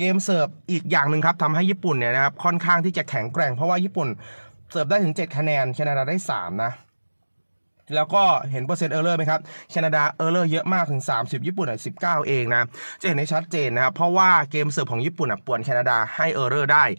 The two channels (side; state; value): both; inverted; correlation -1.00